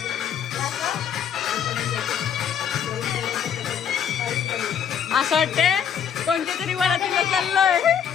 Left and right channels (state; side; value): quieter; right; 8.3 dB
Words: असं वाटते कोणत्या तरी वरातीला चाललोय.